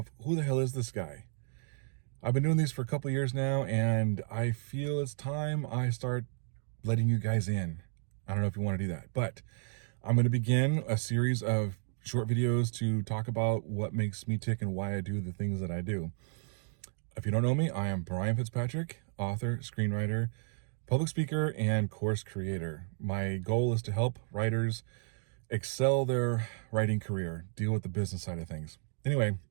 who the hell is this guy? I've been doing these for a couple years now, and I feel it's time I start letting you guys in. I don't know if you want to do that, but I'm going to begin a series of short videos to talk about what makes me tick and why I do the things that I do. If you don't know me, I am Brian Fitzpatrick, author, screenwriter, public speaker, and course creator. My goal is to help writers excel their writing career, deal with the business side of things. Anyway,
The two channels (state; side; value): silent; left; 56 dB below the other